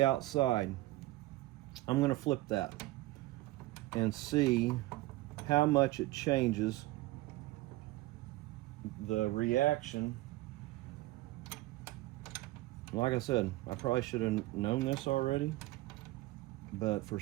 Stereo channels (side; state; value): left; quieter; 18.5 dB